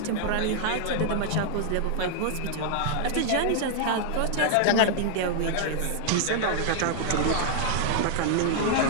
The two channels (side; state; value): both; different; correlation 0.00